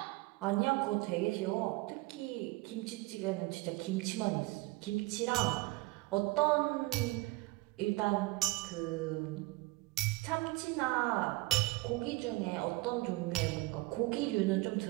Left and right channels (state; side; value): quieter; left; 22.0 dB